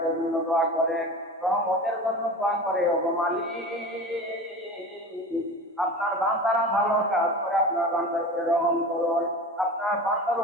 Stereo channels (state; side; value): normal; both; correlation 0.33